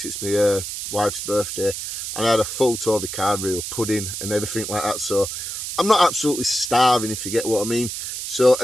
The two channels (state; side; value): noise; right; hiss, 6 dB below the sound